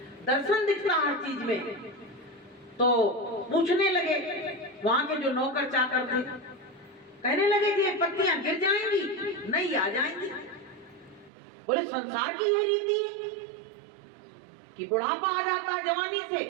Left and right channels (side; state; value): left; drops out; at 11.3 s